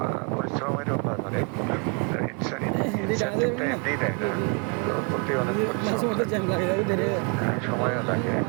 পরিশ্রমেরও কাজ, অনেক ইনসেন্টিভটা এমনিই দেয় না, তো করতে অনেক পরিশ্রম লাগে, সময়ও লাগে।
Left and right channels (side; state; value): left; quieter; 35.9 dB